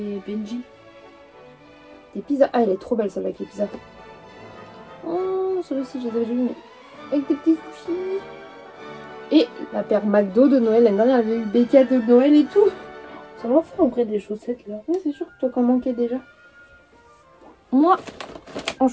Benji. Des pizzas. Ah, elle est trop belle celle avec les pizzas. Oh, celle-ci, je les avais déjà vues, mais avec des petits sushis. Et la paire McDo de Noël. L'année dernière, elle avait eu des cadeaux de Noël et tout. Ça m'a fait en vrai des chaussettes là. Ouais, c'est sûr que toi, qu'en manquais déjà. Moi, en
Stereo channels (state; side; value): identical; both; correlation 1.00